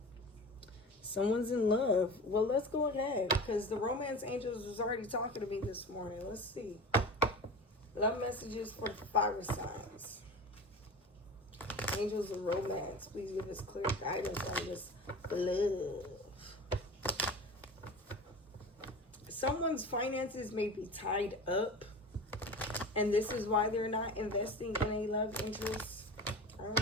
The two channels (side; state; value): both; normal; correlation 0.33